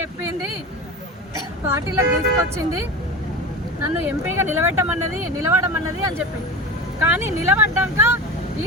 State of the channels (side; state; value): both; normal; correlation 0.29